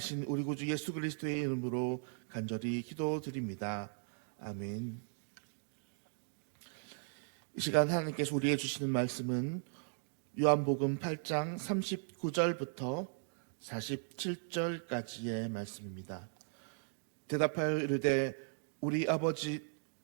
우리 구주 예수 그리스도의 이름으로 간절히 기도드립니다. 아멘. 이 시간 하나님께서 우리에게 주시는 말씀은 요한복음 8장 39절부터 47절까지의 말씀입니다. 대답하여 이르되 우리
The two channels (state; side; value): silent; left; digital silence